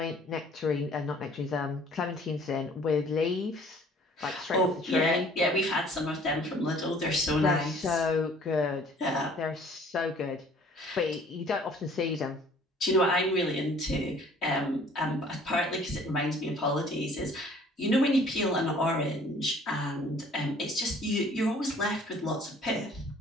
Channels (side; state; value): both; normal; correlation 0.54